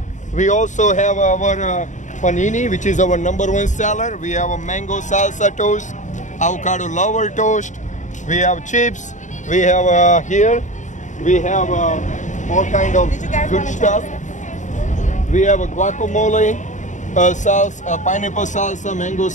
We also have our panini, which is our #1 seller. We have a mango salsa toast, avocado lover toast. We have chips. We have here. We have all kind of good stuff. We have a guacamole, salsa, pineapple salsa, mango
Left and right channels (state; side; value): late; right; 0.36 ms